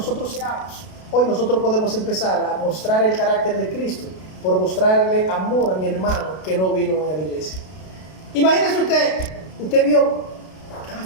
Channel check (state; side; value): late; right; 32 ms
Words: seamos. Hoy nosotros podemos empezar a mostrar el carácter de Cristo por mostrarle amor a mi hermano que no vino a la iglesia. Imagínese usted vio que